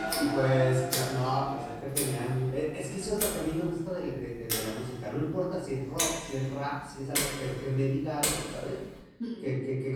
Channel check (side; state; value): both; identical; correlation 1.00